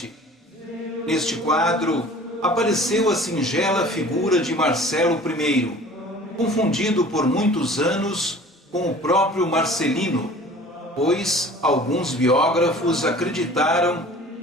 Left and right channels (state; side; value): normal; both; correlation 0.46